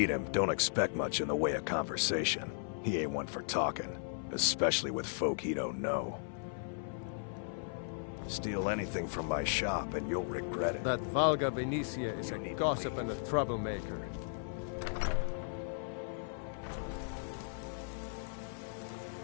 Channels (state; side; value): silent; right; 54 dB below the other